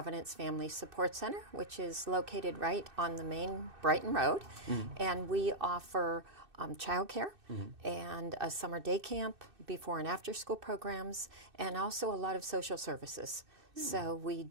Family Support Center, which is located right on the main Brighton Road. And we offer childcare and a summer day camp, before and after school programs, and also a lot of social services. So we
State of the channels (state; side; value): late; left; 2.6 ms